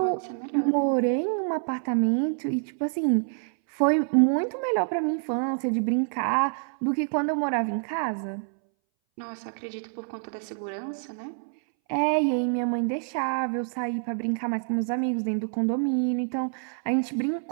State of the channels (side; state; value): left; silent; 60 dB below the other